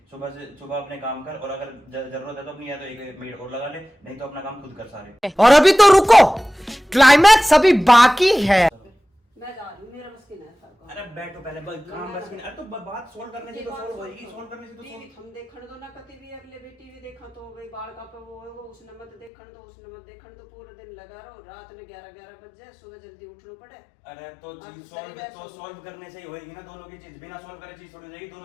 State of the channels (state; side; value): drops out; right; at 19.3 s